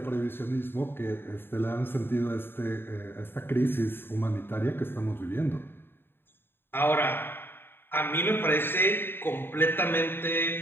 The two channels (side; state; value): right; late; 0.10 ms